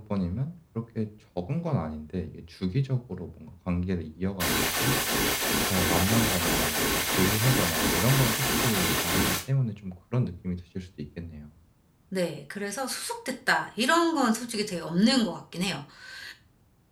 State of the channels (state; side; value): identical; both; correlation 1.00